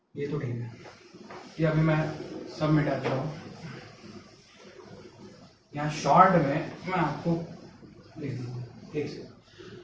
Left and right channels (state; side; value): identical; both; correlation 1.00